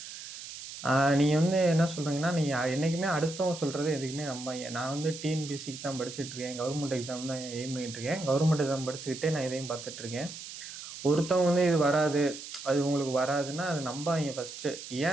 நீங்கள் வந்து என்ன சொல்கிறீங்கன்னா, நீங்கள் என்றைக்குமே அடுத்தவங்க சொல்கிறது எதுக்குமே நம்பாங்க. நான் வந்து டிஎன்பிஎஸ்சிக்கு தான் படிச்சுட்ருக்கேன், கவர்மெண்ட் எக்ஸாம் தான் எய்ம் பண்ணிகிட்ருக்கேன். கவர்மெண்ட் எக்ஸாம் படிச்சுக்கிட்டே நான் இதையும் பார்த்துட்ருக்கேன். ஒருத்தவங்க வந்து இது வராது, அது உங்களுக்கு வராதுன்னா அது நம்பாங்க ஃபஸ்ட்டு.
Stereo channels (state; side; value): noise; right; hiss, 11 dB below the sound